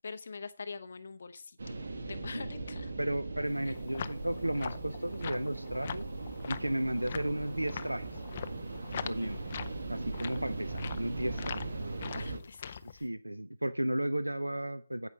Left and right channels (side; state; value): both; inverted; correlation -0.94